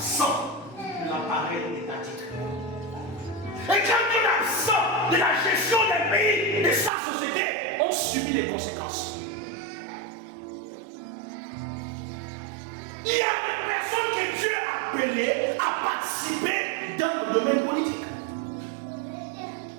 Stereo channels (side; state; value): left; drops out; at 6.9 s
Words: de l'appareil étatique. Et quand on est absent de la gestion des pays, de sa société, on subit les conséquences. Il y a des personnes que Dieu a appelées à participer dans le domaine politique.